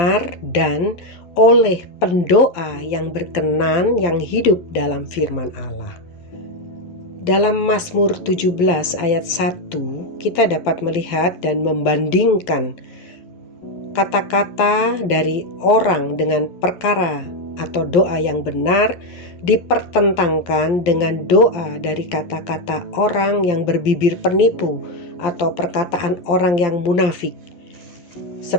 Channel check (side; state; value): right; late; 12 ms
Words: dan oleh pendoa yang berkenan yang hidup dalam firman Allah. Dalam Mazmur 17 ayat 1 kita dapat melihat dan membandingkan kata-kata dari orang dengan perkara atau doa yang benar dipertentangkan dengan doa dari kata-kata orang yang berbibir penipu atau perkataan orang yang munafik.